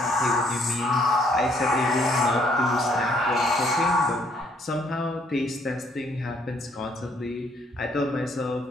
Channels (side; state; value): both; normal; correlation 0.66